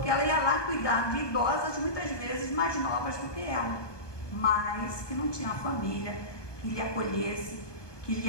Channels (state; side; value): late; right; 1.2 ms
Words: ela ia lá cuidar de idosas, muitas vezes mais novas do que ela, mas que não tinha família que lhe acolhesse, que lhe